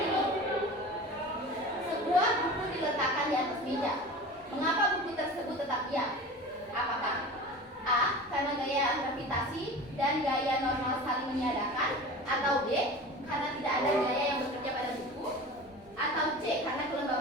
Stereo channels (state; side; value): normal; both; correlation 0.35